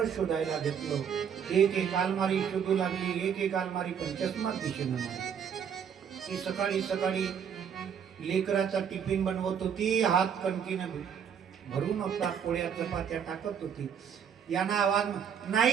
शोधायला घेतलं. एक अलमारी शोधू लागली, एक अलमारी, पण चष्मा दिसेना मला. ती सकाळी सकाळी लेकराचा टिफिन बनवत होती, हात कणकीनं भरून होता, पोळ्या चपात्या टाकत होती. यांना आवाज,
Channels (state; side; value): quieter; left; 7.8 dB